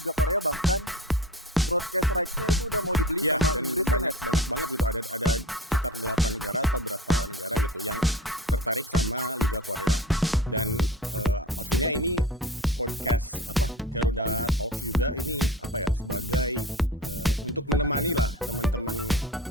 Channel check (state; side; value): normal; both; correlation 0.34